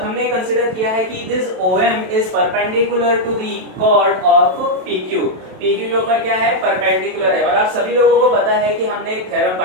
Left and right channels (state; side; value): late; left; 27 ms